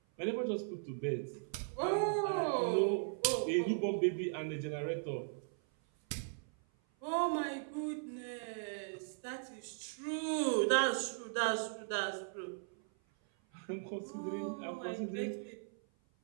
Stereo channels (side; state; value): left; silent; 52 dB below the other